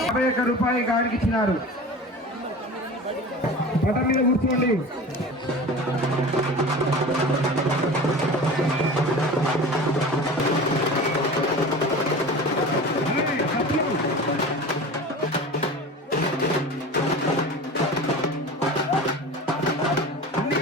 51 రూపాయలు గాడికి ఇచ్చినారు. పటం మీద కూర్చోండి.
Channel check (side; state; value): both; normal; correlation 0.35